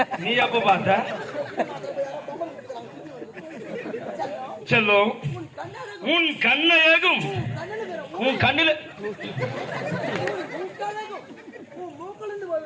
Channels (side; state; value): both; identical; correlation 1.00